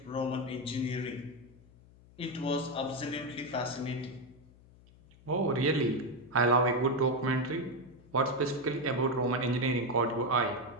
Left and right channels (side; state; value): left; noise; hum, 25 dB below the sound